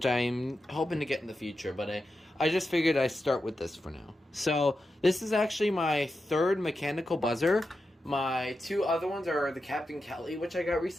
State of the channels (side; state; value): both; normal; correlation 0.89